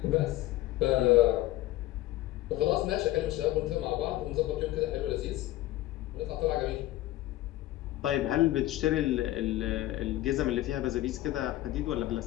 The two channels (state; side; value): quieter; right; 15.7 dB